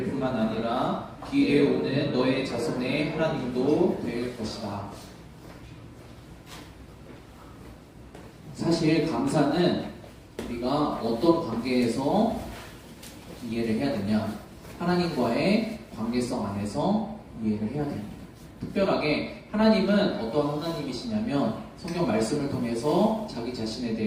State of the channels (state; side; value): identical; both; correlation 1.00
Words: 뿐만 아니라 뒤에 오는 너의 자손의 하나님도 될 것이다. 사실 감사는 우리가 어떤 관계에서 이해를 해야 되냐? 하나님과의 관계성 안에서 이해를 해야 됩니다. 특별하게 하나님은 어떤 하나님이시냐면 성경 말씀을 통해서 자기 자신에